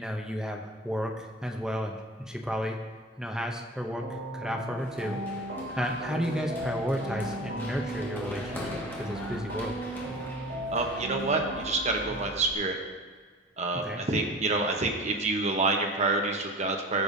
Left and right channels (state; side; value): normal; both; correlation 0.38